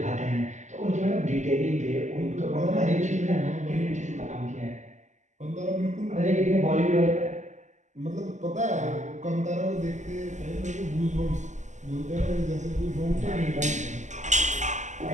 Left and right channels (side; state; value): left; late; 0.34 ms